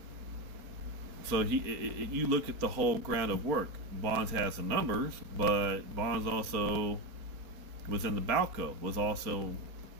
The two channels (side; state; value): left; late; 4.3 ms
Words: So you look at the whole ground of work. Bonds has some numbers, but Bonds also was in the Balco, was also